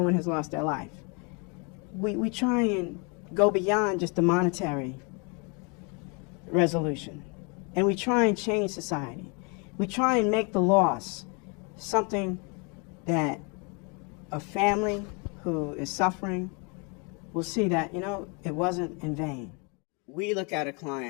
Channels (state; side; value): quieter; right; 33.4 dB